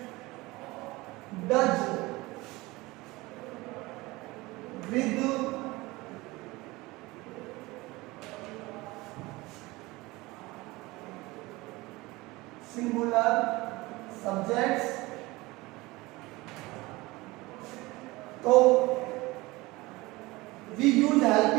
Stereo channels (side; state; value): left; quieter; 21.3 dB